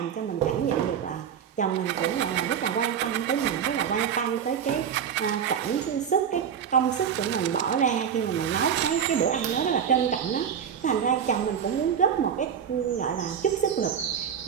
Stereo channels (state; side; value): quieter; left; 8.0 dB